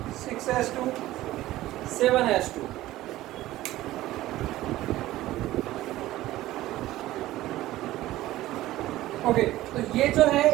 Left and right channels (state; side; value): quieter; left; 15.9 dB